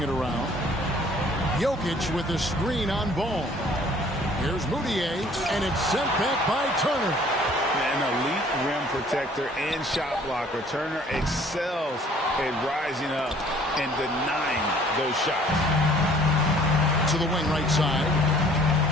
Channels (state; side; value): normal; both; correlation 0.55